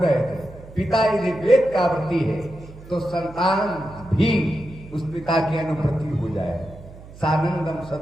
थे, पिता यदि वेद का व्रती है तो संतान भी उस पिता की अनुप्रति हो जाए। सानंदम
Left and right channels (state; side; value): noise; right; hum, 18 dB below the sound